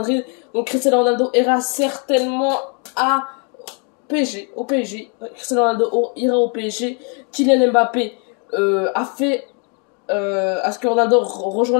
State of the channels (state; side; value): quieter; right; 37.8 dB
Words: Donc Cristiano Ronaldo ira certainement à PSG, au PSG. Cristiano Ronaldo ira au PSG. Kylian Mbappé a fait à ce que Ronaldo